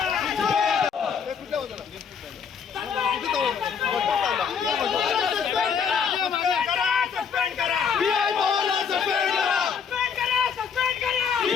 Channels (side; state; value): right; quieter; 6.7 dB